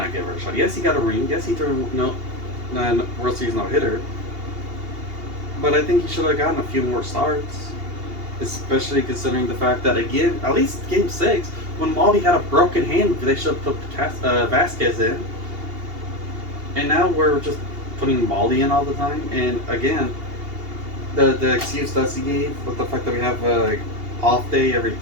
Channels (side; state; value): left; late; 2.8 ms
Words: get a fair shot. Yes, he got a ring. Yes, he threw World Series no-hitter, but I think he should have gotten a few more starts, especially considering the fact that, again, at least Game 6, when Maldi had a broken hand, they should have put Vasquez in. And now we're just putting Maldi in all the time. And again, the excuse that he gave with the fact that we have a off day every